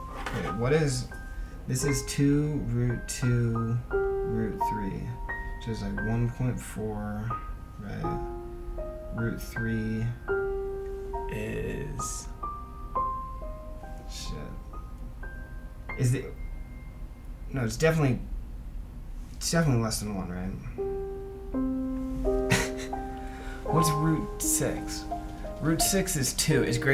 what is... This is 2 root 2 root 3, which is like 1.4, right? Root 3 is... Shit. Is it... No, it's definitely less than 1, right? What's root 6? Root 6 is 2, is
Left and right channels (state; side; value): identical; both; correlation 1.00